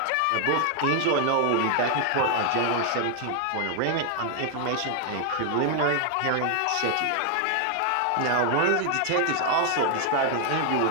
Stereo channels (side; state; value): both; different; correlation 0.00